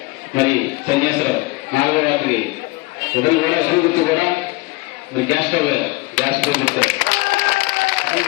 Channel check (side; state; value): right; quieter; 23.1 dB